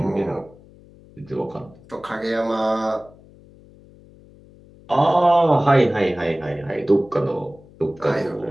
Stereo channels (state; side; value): noise; left; hum, 24 dB below the sound